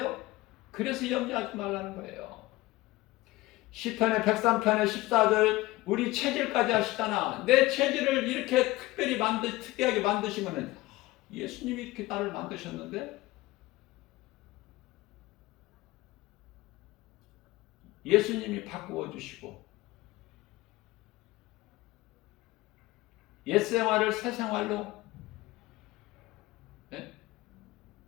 그래서 염려하지 말라는 거예요. 시편의 103편의 14절, 우리 체질까지 하시잖아. 내 체질을 이렇게 특이하게 만드시면은, 예수님이 이렇게 나를 만드셨는데, 예수님이 바꾸어 주시고, 옛 생활을 새 생활로,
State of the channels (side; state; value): right; quieter; 18.8 dB